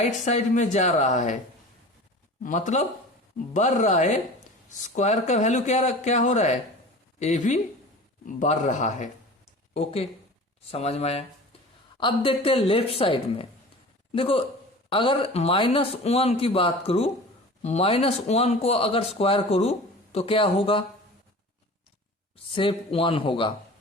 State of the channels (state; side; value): normal; both; correlation 0.38